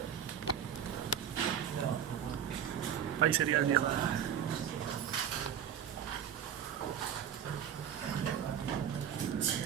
Ahí sería el viejo.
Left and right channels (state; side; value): quieter; left; 9.0 dB